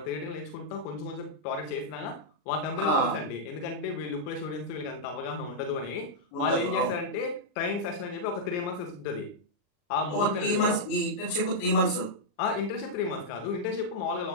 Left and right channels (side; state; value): right; late; 40 ms